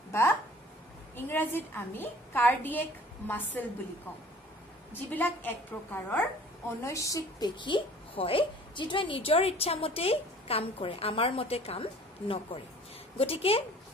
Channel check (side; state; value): both; normal; correlation 0.50